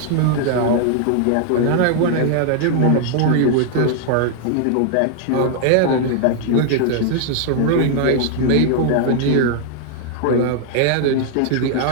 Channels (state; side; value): different; both; correlation 0.00